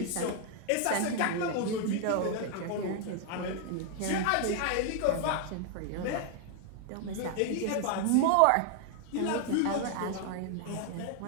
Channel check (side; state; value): both; different; correlation 0.00